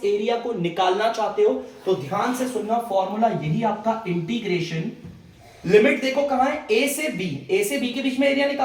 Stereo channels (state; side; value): identical; both; correlation 1.00